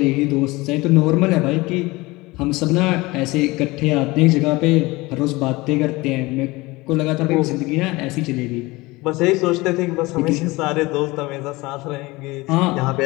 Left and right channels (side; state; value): right; quieter; 21.8 dB